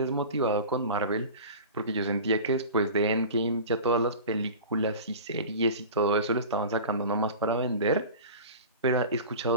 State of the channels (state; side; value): inverted; both; correlation -0.36